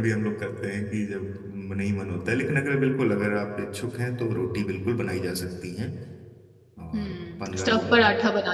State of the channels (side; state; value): both; identical; correlation 1.00